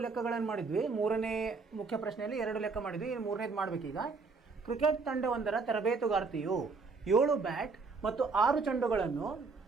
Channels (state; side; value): quieter; left; 4.4 dB